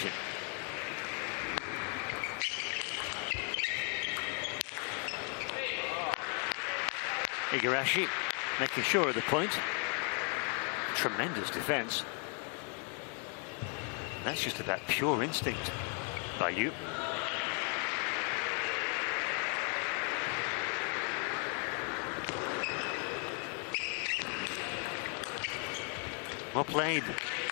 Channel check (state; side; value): quieter; right; 38.5 dB